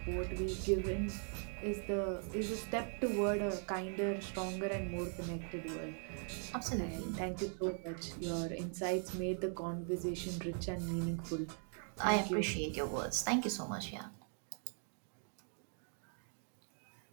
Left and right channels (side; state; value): left; silent; 51 dB below the other